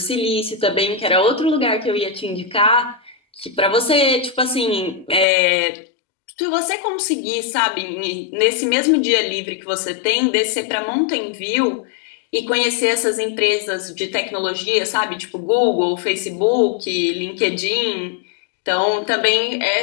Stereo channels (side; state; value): right; drops out; at 5.2 s